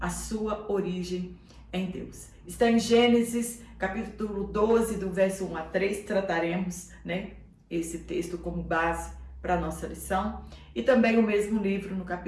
sua origem em Deus. Está em Gênesis, capítulo 12, do verso 1 a 3, trataremos esse texto como base para a nossa lição. E também o mesmo livro, no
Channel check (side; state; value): both; identical; correlation 1.00